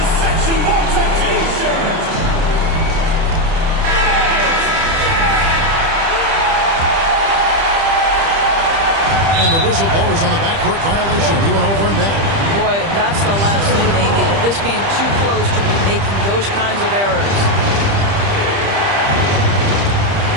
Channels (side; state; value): left; late; 30 ms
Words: section Malta t-shirt. And the whistle blows on the backcourt violation. He went over and back. Boy, that's the last thing they needed. This game too close to be making those kinds of errors.